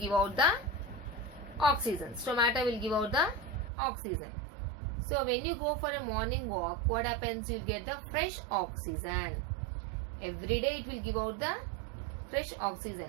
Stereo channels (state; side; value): drops out; left; at 3.7 s